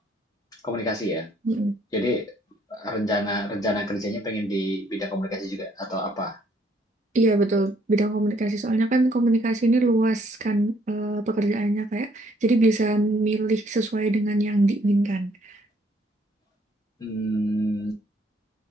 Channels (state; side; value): normal; both; correlation 0.66